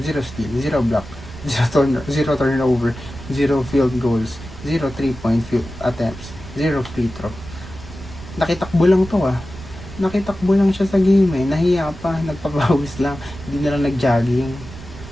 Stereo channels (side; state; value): right; noise; rumble, 15 dB below the sound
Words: 0 steal, 0 block, 0 turnover, 0 field goals, 0 3-point field attempts, 0 free throw. Nakitakbo lang to Nakitakbo lang siya sa game Nahiya pa, nagpapawis lang. Hindi na lang nag-jogging.